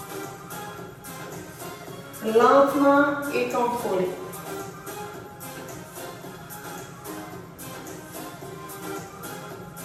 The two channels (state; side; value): identical; both; correlation 1.00